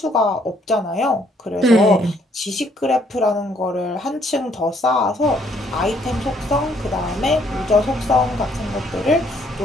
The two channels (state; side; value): normal; both; correlation 0.67